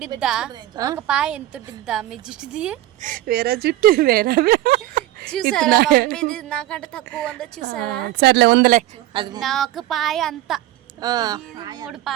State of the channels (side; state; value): left; quieter; 14.8 dB